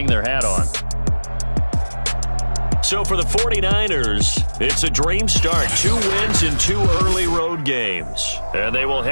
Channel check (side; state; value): both; inverted; correlation -1.00